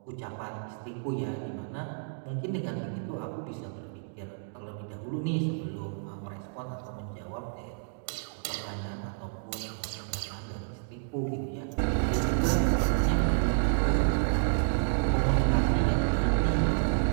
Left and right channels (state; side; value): silent; left; digital silence